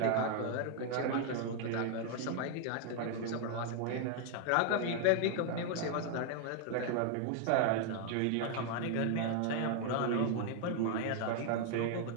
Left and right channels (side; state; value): both; different; correlation 0.00